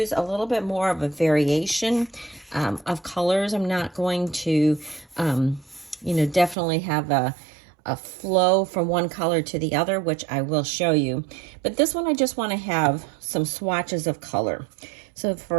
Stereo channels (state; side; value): drops out; left; at 6.6 s